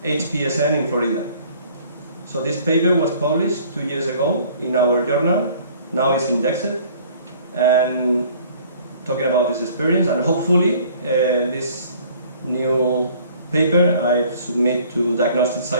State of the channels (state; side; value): inverted; both; correlation -0.54